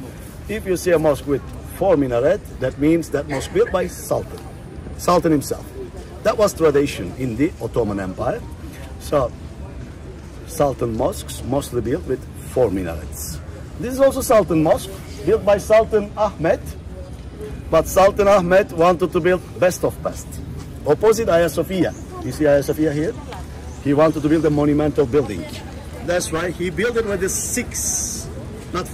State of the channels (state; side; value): identical; both; correlation 1.00